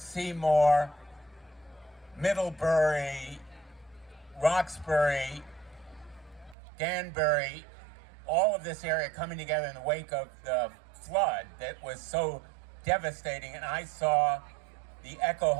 Middlebury, Roxbury, Danbury, all of this area coming together in the wake of the flood that was so devastating. And I saw the Echo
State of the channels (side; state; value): left; drops out; at 6.6 s